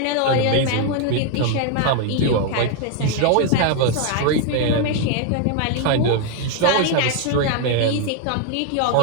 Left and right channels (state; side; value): different; both; correlation 0.01